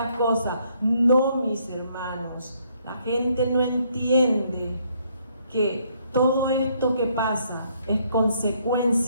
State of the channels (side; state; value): both; inverted; correlation -0.69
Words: cosas? No, mis hermanos, la gente no entiende que todo esto que pasa es